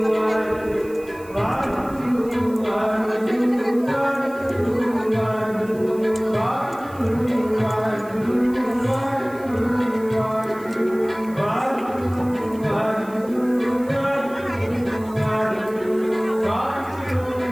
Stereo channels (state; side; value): noise; right; hiss, 24 dB below the sound